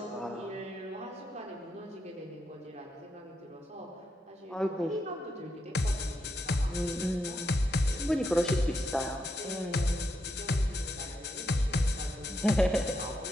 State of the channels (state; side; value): normal; both; correlation 0.82